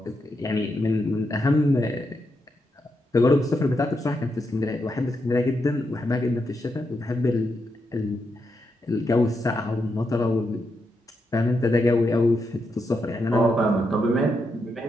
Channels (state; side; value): normal; both; correlation 0.83